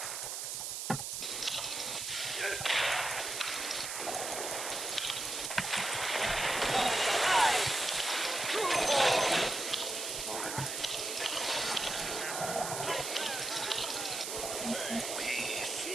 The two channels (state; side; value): noise; right; hiss, 4 dB below the sound